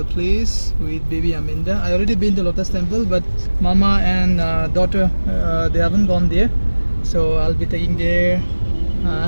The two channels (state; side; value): inverted; both; correlation -1.00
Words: place with baby Aminda. I already been to Lotus Temple, but Mama and daughter they haven't gone there, so I'll be taking there.